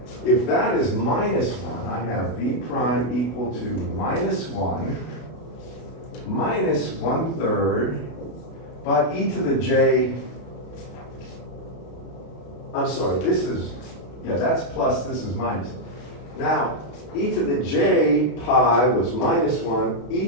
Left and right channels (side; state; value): right; late; 32 ms